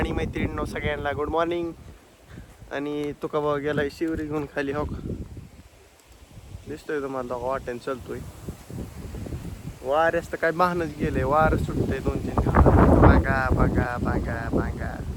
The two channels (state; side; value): identical; both; correlation 1.00